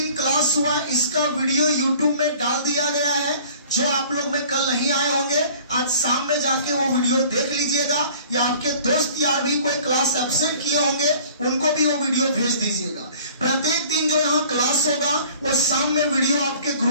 क्लास हुआ इसका वीडियो यूट्यूब में डाल दिया गया है। जो आप लोग में कल नहीं आए होंगे, आज शाम में जाके वो वीडियो देख लीजिएगा, या आपके दोस्त यार भी कोई क्लास एब्सेंट किए होंगे उनको भी वो वीडियो भेज दीजिएगा। प्रत्येक दिन जो यहाँ क्लास होगा वो शाम में वीडियो आपके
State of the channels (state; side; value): inverted; both; correlation -0.50